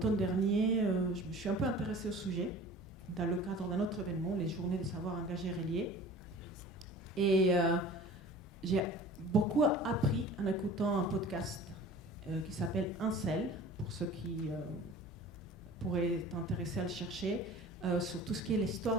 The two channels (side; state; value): both; normal; correlation 0.43